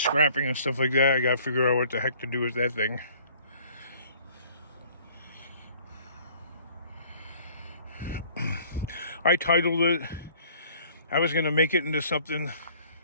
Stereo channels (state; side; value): inverted; both; correlation -0.54